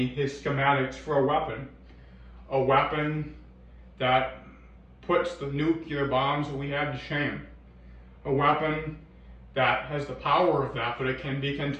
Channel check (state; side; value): identical; both; correlation 1.00